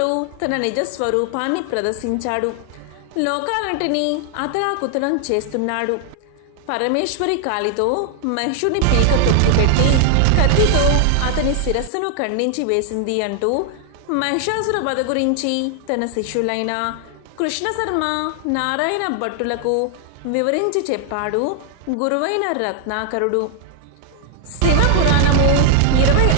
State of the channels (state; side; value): different; both; correlation 0.00